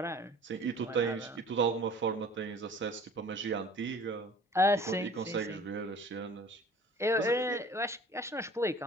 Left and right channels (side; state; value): both; normal; correlation 0.47